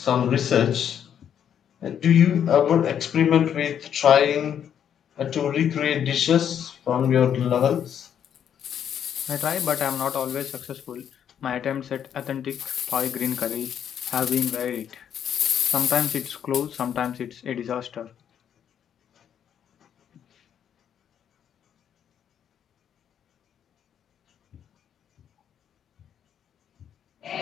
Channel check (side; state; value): right; quieter; 9.0 dB